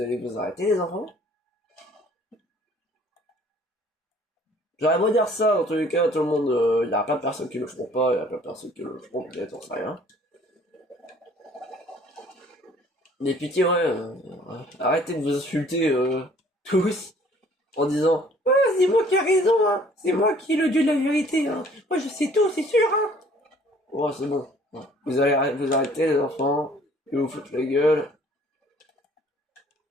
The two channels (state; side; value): normal; both; correlation 0.56